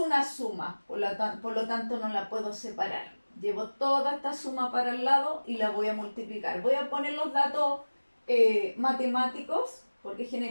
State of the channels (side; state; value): both; inverted; correlation -1.00